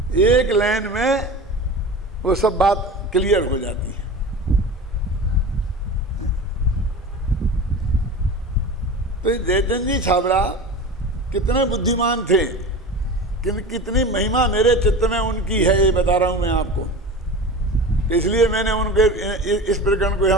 एक लाइन में वो सब बात क्लियर हो जाती है। तो ये जयचंद जी छाबड़ा कितने बुद्धिमान थे, कितनी महिमा मेरे चित्त में उनकी है, ये बता रहा हूं मैं आपको। इसलिए मैंने उनके इस प्रकरण को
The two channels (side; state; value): both; normal; correlation 0.32